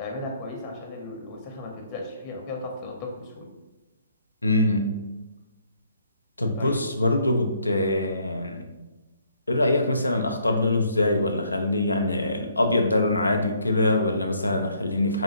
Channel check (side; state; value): both; inverted; correlation -0.66